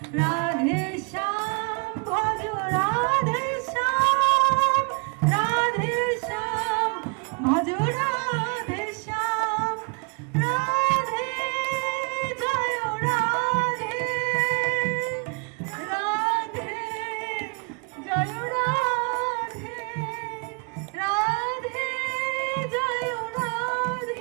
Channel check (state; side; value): quieter; left; 35.5 dB